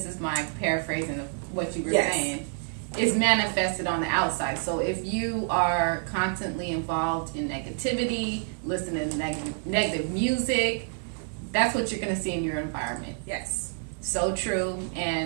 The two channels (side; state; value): left; silent; 59 dB below the other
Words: is my paraphrasing of what you were saying, is manifested on the outside. So if you are constantly involved in negativity, listening to negative music, that's what you're going to see in your environment. Yes. So true.